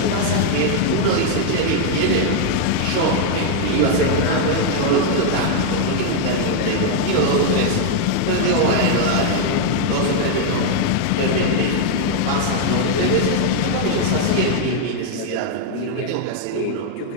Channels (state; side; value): different; both; correlation 0.00